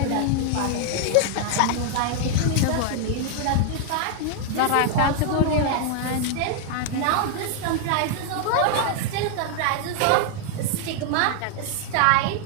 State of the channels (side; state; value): both; different; correlation 0.00